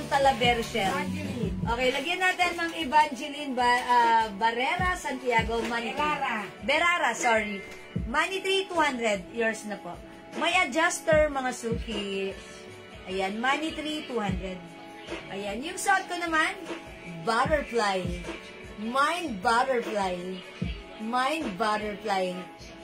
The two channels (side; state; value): both; identical; correlation 1.00